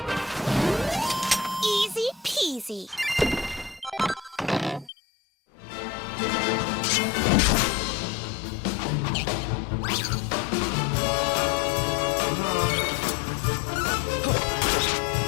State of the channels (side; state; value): right; drops out; at 4.9 s